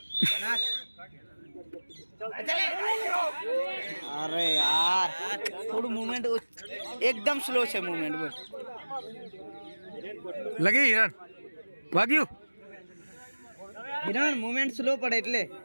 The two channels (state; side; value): inverted; both; correlation -1.00